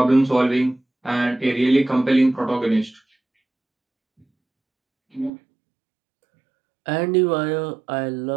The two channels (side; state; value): left; drops out; at 5.3 s